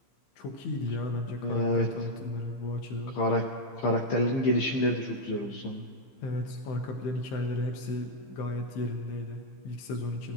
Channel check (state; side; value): late; right; 15 ms